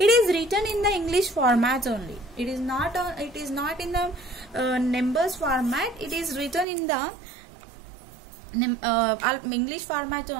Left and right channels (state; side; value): drops out; left; at 6.7 s